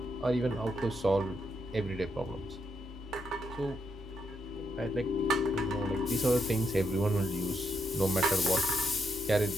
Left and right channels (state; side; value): normal; both; correlation 0.80